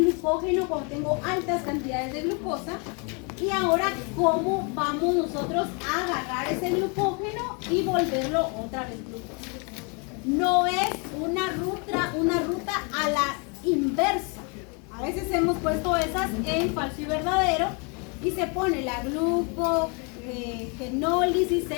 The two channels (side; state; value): right; quieter; 34.3 dB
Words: cuando tengo altas cantidades de glucosa. Y ahora, cómo vamos nosotros a agarrar ese glucógeno y volverlo otra vez glucosa. No es una ruta a la inversa. A veces hemos puesto esas en falso y verdadero y se pone la glucogenólisis